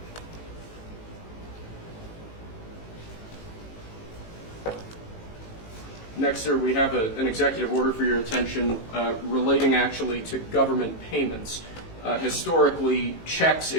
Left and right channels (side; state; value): right; late; 18 ms